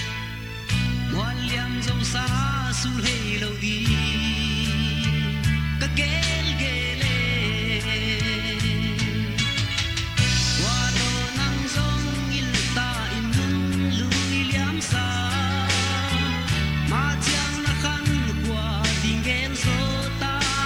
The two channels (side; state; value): both; identical; correlation 1.00